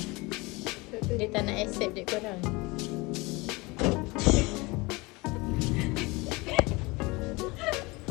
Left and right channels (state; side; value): quieter; right; 24.6 dB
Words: Dia tak nak accept dek korang.